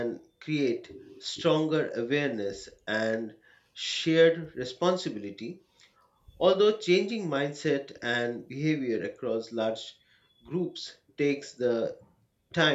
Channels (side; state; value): both; identical; correlation 1.00